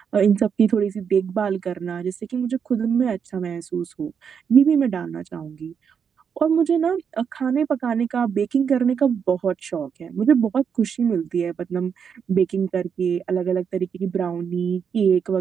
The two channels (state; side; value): quieter; left; 7.0 dB